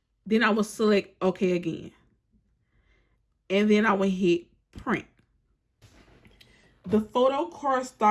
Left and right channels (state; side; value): identical; both; correlation 1.00